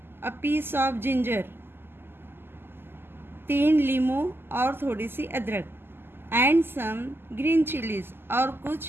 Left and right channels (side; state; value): left; late; 0.11 ms